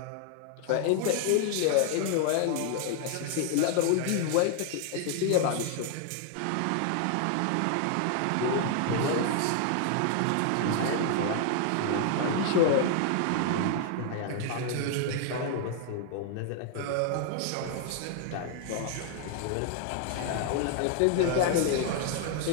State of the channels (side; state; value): both; different; correlation 0.00